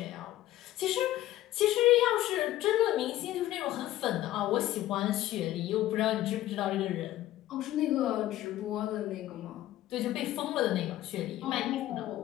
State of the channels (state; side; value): quieter; right; 14.6 dB